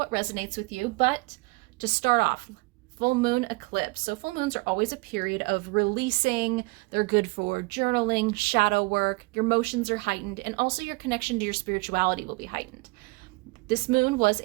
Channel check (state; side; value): quieter; left; 26.0 dB